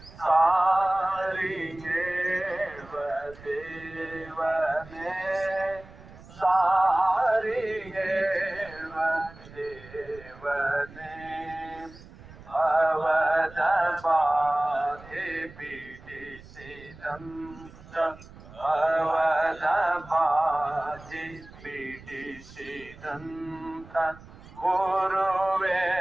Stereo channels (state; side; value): noise; right; rumble, 19 dB below the sound